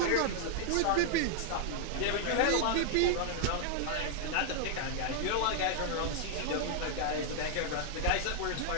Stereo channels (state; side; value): different; both; correlation -0.01